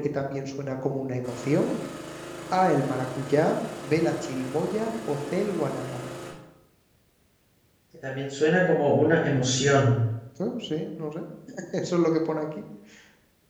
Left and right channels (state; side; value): identical; both; correlation 1.00